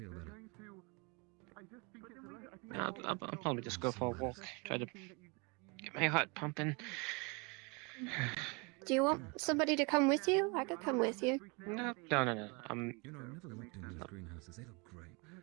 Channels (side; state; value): left; quieter; 30.2 dB